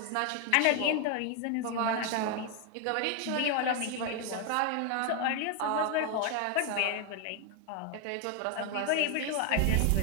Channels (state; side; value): different; both; correlation 0.01